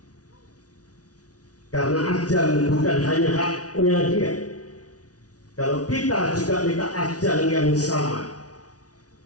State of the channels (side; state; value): right; late; 0.68 ms